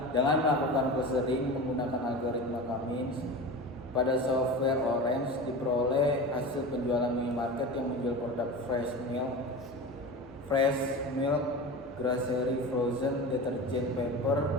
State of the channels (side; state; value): both; normal; correlation 0.30